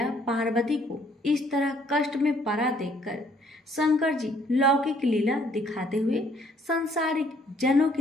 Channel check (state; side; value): normal; both; correlation 0.64